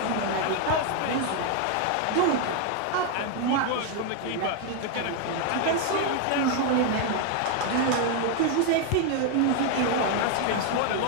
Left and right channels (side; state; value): both; different; correlation 0.01